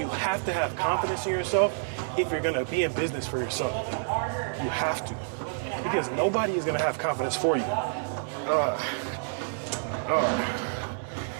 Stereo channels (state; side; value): silent; left; 59 dB below the other